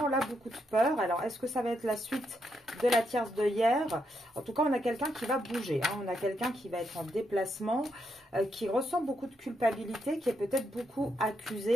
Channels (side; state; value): both; normal; correlation 0.80